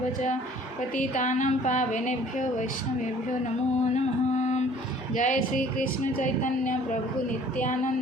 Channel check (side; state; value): both; normal; correlation 0.53